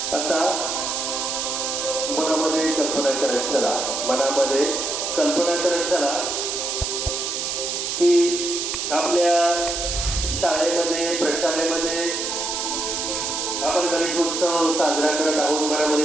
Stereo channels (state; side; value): noise; right; hiss, 2 dB below the sound